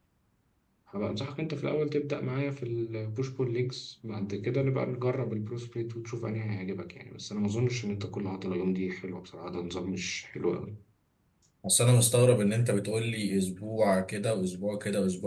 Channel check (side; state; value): both; identical; correlation 1.00